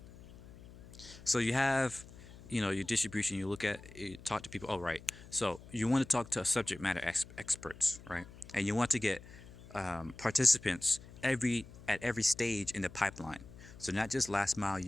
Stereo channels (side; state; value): left; noise; hum, 18 dB below the sound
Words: So you have, your distribution. You look at, you talk to people. Oh, right. So you want to talk to subject matter experts, right? And you want to get participants at every stage in the pipeline. So not just last mile